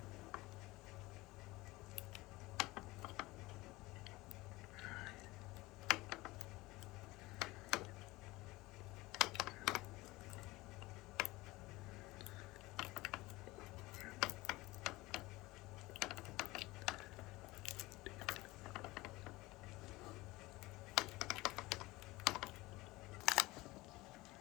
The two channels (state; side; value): quieter; right; 20.4 dB